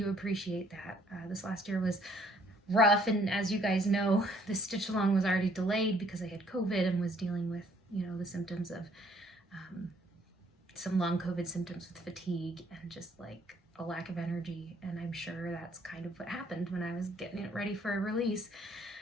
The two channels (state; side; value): normal; both; correlation 0.63